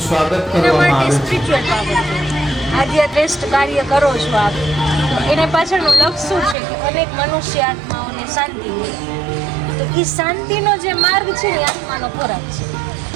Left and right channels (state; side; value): drops out; left; at 6.6 s